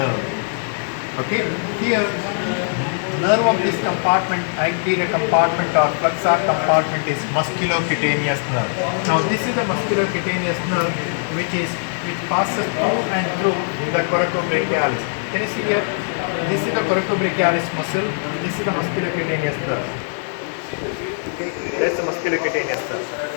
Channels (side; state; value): right; silent; digital silence